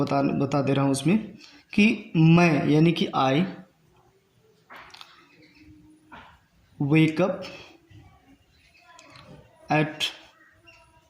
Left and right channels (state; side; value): identical; both; correlation 1.00